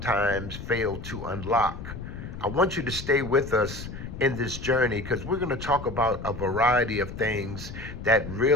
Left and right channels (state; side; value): noise; left; rumble, 10 dB below the sound